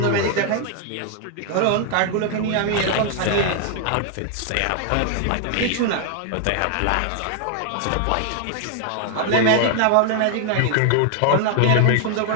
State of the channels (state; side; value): different; both; correlation 0.00